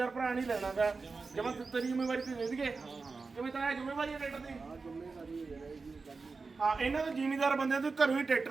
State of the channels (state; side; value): quieter; left; 4.3 dB